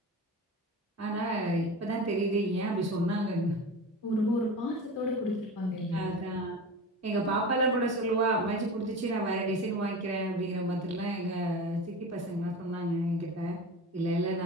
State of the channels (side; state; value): both; normal; correlation 0.31